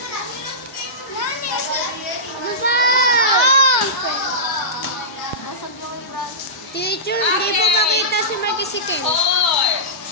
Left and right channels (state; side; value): normal; both; correlation -0.18